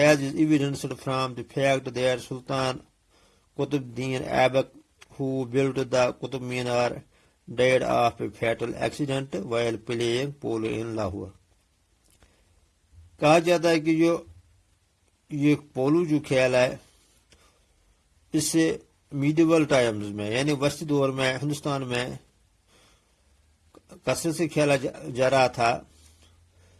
evidenced from the fact that Sultan Qutb-Din Aibak, who built the Qutb Minar, died of a fatal accident while playing polo in Lahore. کہا جاتا ہے کہ جو یہ polo جو کھیل ہے اس سے میڈیول ٹائمز میں یعنی وسطی دور میں ہندوستان میں کثرت سے کھیلا جا رہا تھا.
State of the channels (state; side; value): identical; both; correlation 1.00